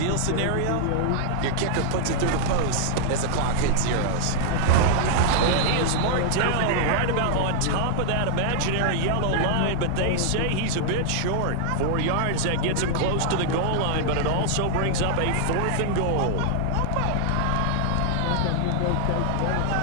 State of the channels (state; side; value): different; both; correlation -0.01